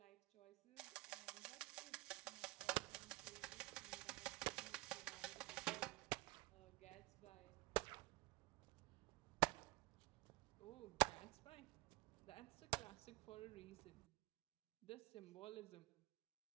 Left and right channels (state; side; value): quieter; left; 23.2 dB